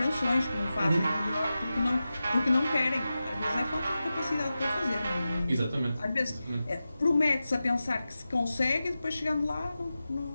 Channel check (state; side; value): inverted; both; correlation -0.93